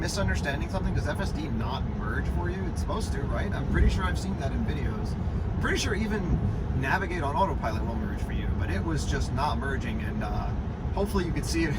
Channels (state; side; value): identical; both; correlation 1.00